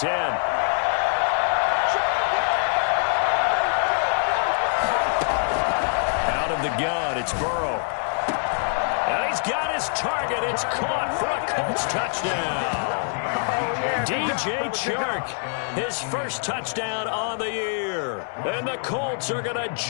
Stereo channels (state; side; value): silent; right; digital silence